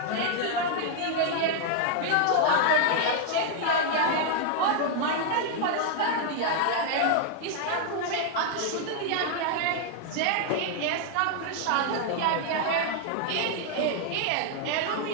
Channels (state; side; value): different; both; correlation 0.00